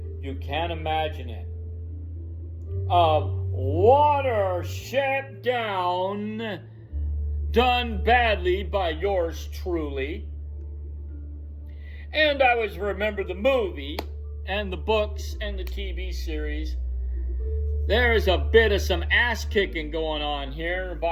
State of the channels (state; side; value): identical; both; correlation 1.00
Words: You Can't Imagine It, of Watership Down, done badly by yours truly. And I always remember the movie and the books and the TV series. There's a bit of some ass kicking going on here